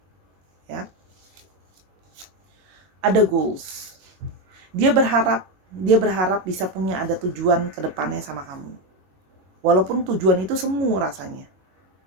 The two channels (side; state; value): left; late; 21 ms